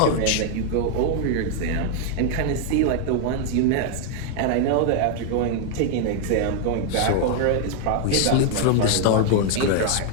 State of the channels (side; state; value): both; different; correlation 0.00